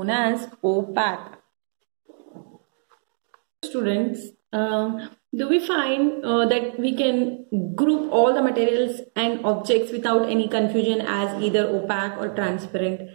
as opaque. Students, do we find that we can group all the materials and objects without any confusion as either opaque or transparent?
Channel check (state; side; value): silent; left; digital silence